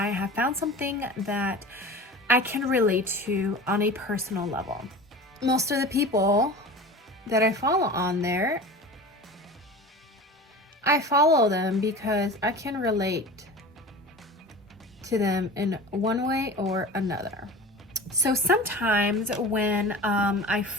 have found something that I can relate to on a personal level. Most of the people that I follow on there, I follow them because I can relate to them in one way or another. So sometimes when I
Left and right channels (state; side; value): normal; both; correlation 0.35